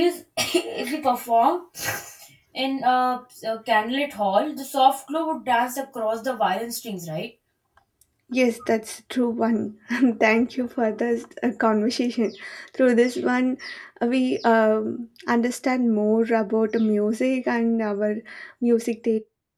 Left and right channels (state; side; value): identical; both; correlation 1.00